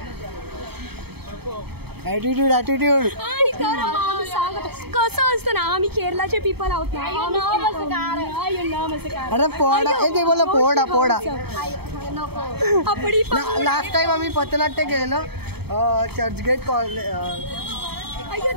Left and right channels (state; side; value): late; left; 0.97 ms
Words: ॲटिट्यूड. आणि तर आम्ही सांगत कसं असतं ना आम्ही केरलाचे पीपल आहोत ना. अरे पोडा ते बोला पोडा. आपली लास्ट टाइम आम्ही पथनाट्य केलेलं चर्चगेट